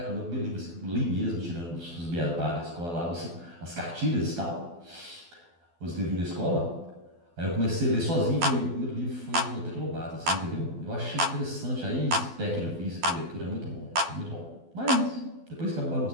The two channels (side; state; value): left; late; 12 ms